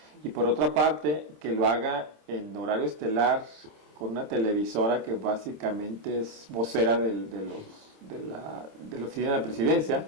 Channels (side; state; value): left; late; 27 ms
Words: y por otra parte, que lo haga en horario estelar con una televisora que básicamente es vocera de la oficina de la presidencia,